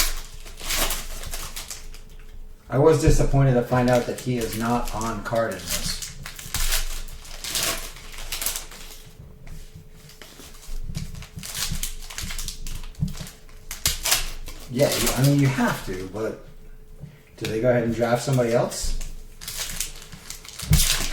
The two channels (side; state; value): both; identical; correlation 1.00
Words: I was disappointed to find out that he is not on card in this. Yeah, I mean, you have to, but do they go ahead and draft somebody else? You